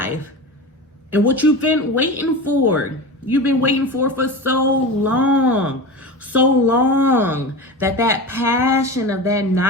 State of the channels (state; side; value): normal; both; correlation 0.28